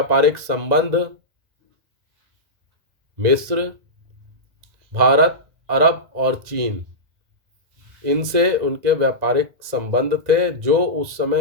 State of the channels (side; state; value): left; late; 1.9 ms